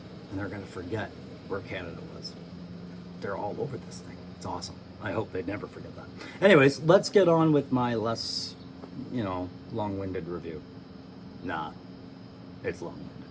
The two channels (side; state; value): both; identical; correlation 1.00